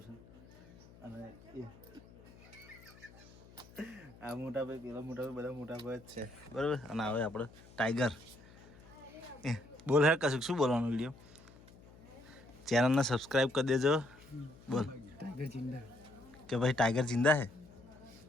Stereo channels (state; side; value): noise; left; hum, 22 dB below the sound